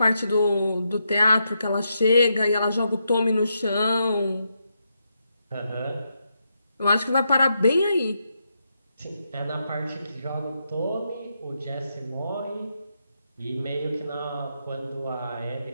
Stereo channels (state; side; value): inverted; both; correlation -0.82